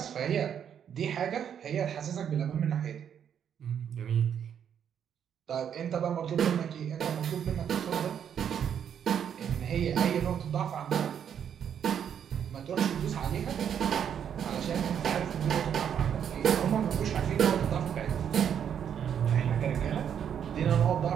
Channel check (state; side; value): quieter; left; 8.6 dB